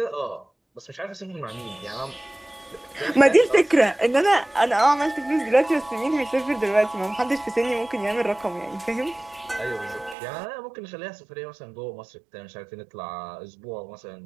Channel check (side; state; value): left; drops out; at 10.2 s